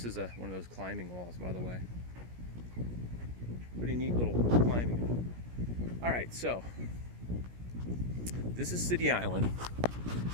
is one of those climbing walls, by the way. Pretty neat little climbing wall. All right, so this is City Island.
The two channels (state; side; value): late; left; 17 ms